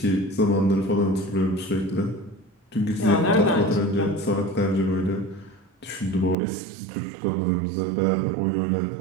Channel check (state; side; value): drops out; left; at 6.4 s